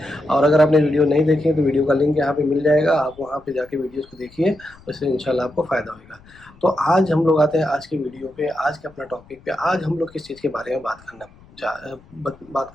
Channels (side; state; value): left; noise; rumble, 26 dB below the sound